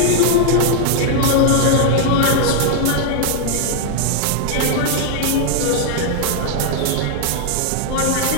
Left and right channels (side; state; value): both; different; correlation 0.00